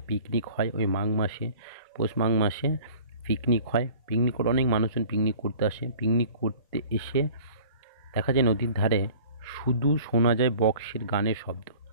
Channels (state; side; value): inverted; both; correlation -0.46